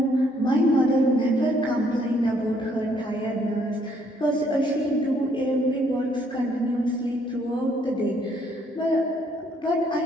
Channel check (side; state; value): both; normal; correlation 0.67